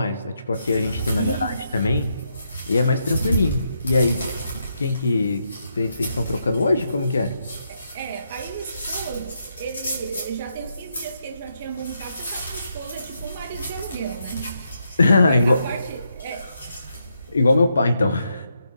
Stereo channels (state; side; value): inverted; both; correlation -0.80